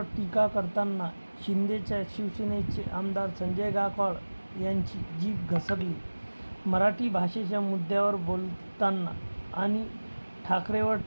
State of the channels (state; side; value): inverted; both; correlation -1.00